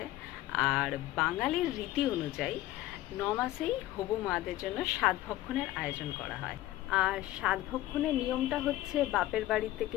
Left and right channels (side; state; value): right; quieter; 15.7 dB